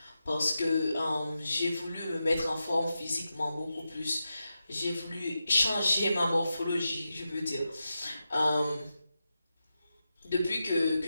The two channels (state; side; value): inverted; both; correlation -0.89